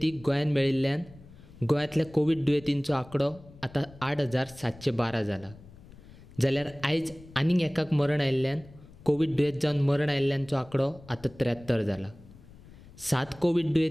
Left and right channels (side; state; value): left; noise; rumble, 21 dB below the sound